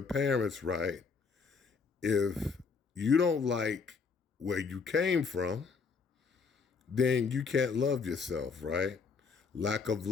parents, right? If you don't like where you came from, then you can't love yourself, right? Lack of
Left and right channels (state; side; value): quieter; right; 5.2 dB